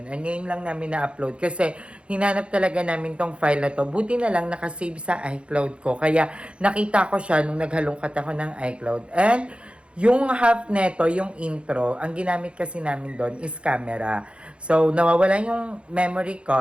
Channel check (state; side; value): late; left; 0.058 ms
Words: And ngayon lang namin na-upload kasi hinanap talaga namin tong file na to. Buti na lang nakasave sa iCloud ko. Kaya nakita ko siya nung naghalongkat ako ng iCloud. And yung half neto, yung intro, ang ginamit kasi namin doon is camera. So nawawala yung memory